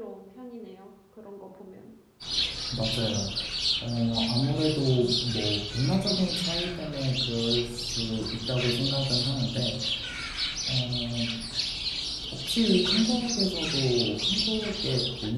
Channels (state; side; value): identical; both; correlation 1.00